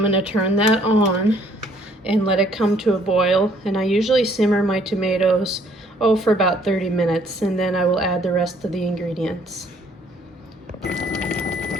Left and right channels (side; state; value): both; normal; correlation 0.63